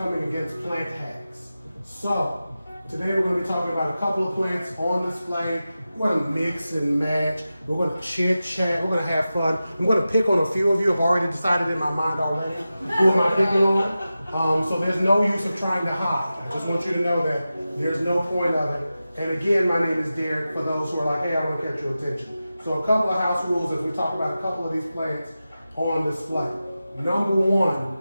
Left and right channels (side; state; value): both; inverted; correlation -0.93